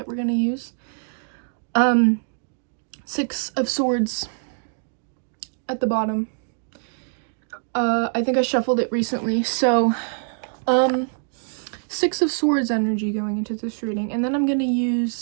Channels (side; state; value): left; silent; 63 dB below the other